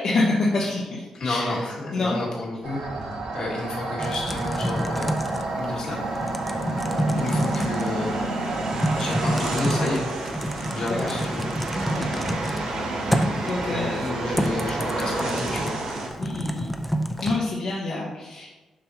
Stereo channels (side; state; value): both; normal; correlation 0.83